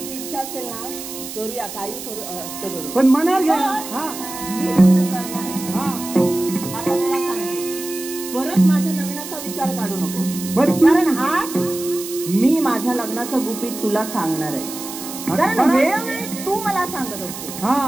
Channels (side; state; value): right; noise; hiss, 10 dB below the sound